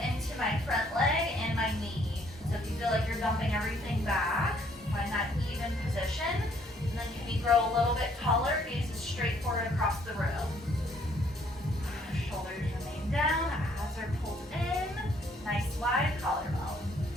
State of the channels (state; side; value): normal; both; correlation 0.65